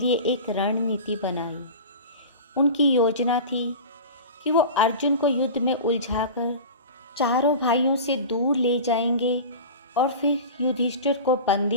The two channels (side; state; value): both; inverted; correlation -0.33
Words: एक रणनीति बनाई। उनकी योजना थी कि वो अर्जुन को युद्ध में उलझाकर चारों भाइयों से दूर ले जाएंगे और फिर युधिष्ठिर को